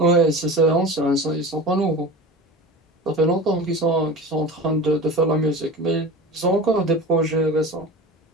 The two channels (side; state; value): both; normal; correlation 0.32